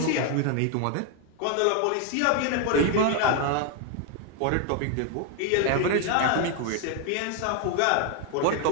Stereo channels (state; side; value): different; both; correlation 0.00